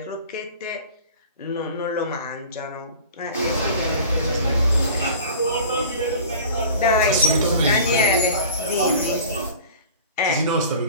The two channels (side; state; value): both; inverted; correlation -0.41